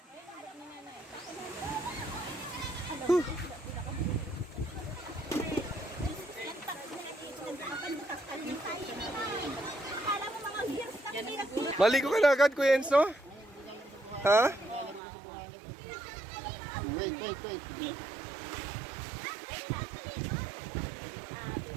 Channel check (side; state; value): left; drops out; at 15.0 s